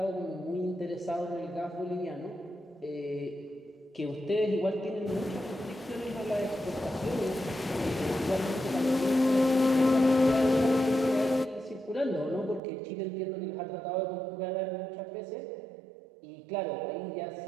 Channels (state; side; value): drops out; left; at 12.6 s